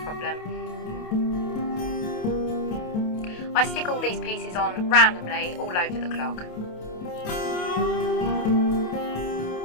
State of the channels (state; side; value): late; right; 28 ms